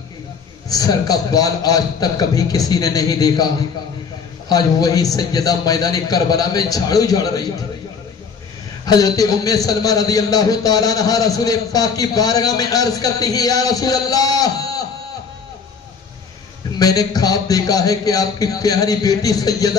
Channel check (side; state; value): right; quieter; 5.7 dB